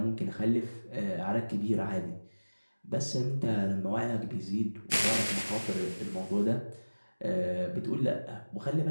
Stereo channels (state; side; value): inverted; both; correlation -1.00